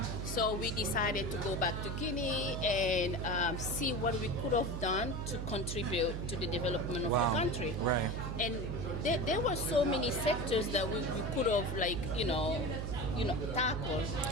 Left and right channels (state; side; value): noise; right; hum, 4 dB below the sound